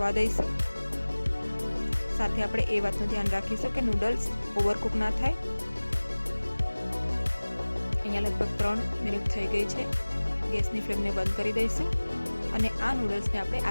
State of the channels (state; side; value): inverted; both; correlation -1.00